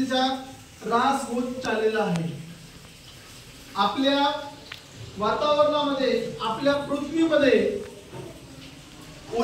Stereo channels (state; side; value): identical; both; correlation 1.00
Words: ऱ्हास होत चाललेला आहे। आपल्या वातावरणामध्ये, आपल्या पृथ्वीमध्ये